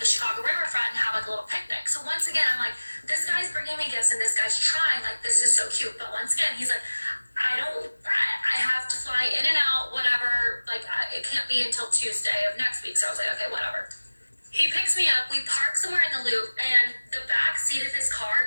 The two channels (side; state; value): both; inverted; correlation -1.00